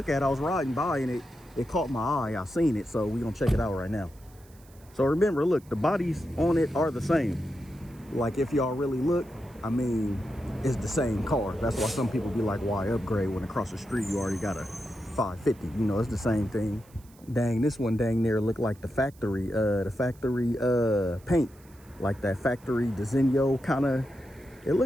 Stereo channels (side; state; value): right; noise; hiss, 28 dB below the sound